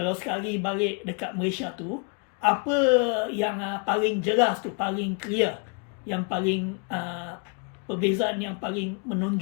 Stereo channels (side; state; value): right; quieter; 36.6 dB